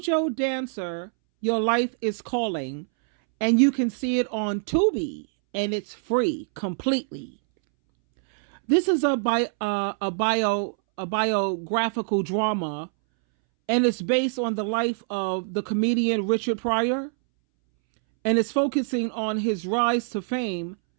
Dancer, Your Life is Calling, and you can see it on Tubi, and it's free completely. This is a biographical drama, and it's based on the life of the comedian Richard Pryor, and it's focusing on his rise to fame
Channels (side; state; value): left; silent; 62 dB below the other